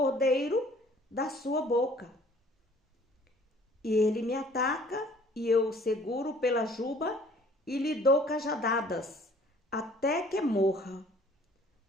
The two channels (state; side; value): normal; both; correlation 0.55